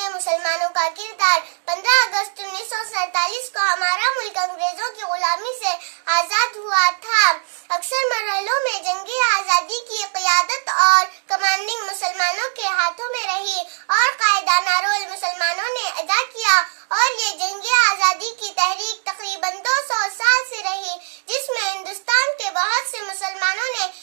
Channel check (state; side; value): silent; left; digital silence